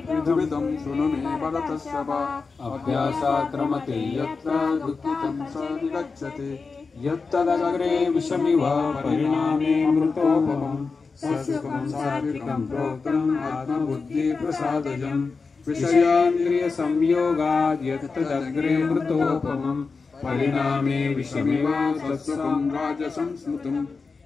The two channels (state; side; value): quieter; right; 4.5 dB